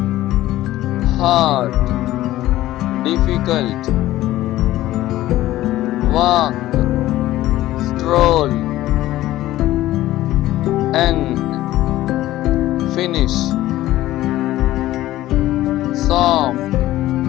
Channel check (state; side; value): quieter; right; 15.3 dB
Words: hard, difficult, walk, stroll, end, finish, soft,